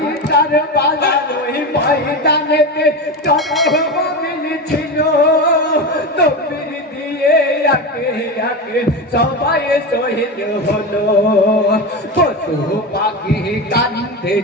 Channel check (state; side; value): normal; both; correlation 0.20